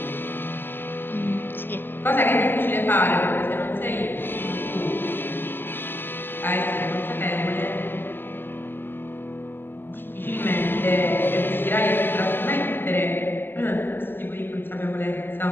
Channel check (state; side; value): late; right; 0.099 ms